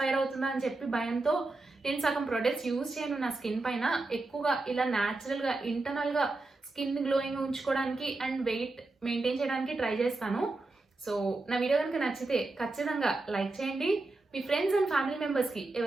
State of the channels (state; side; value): quieter; left; 3.2 dB